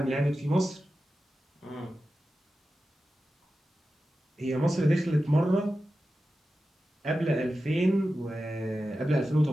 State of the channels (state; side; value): normal; both; correlation 0.93